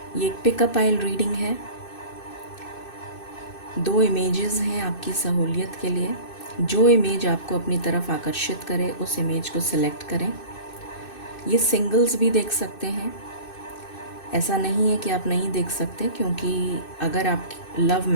ये एक पिकअप आइल रीडिंग है। 2 इमेजेस हैं आपकी सहूलियत के लिए। जो इमेज आपको अपनी तरफ आकर्षित करे उस इमेज को सिलेक्ट करें। ये सिंगल्स भी देख सकते हैं, ऐसा नहीं है कि आप नहीं देख सकते, क्योंकि अगर आप लव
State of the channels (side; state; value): right; late; 2.6 ms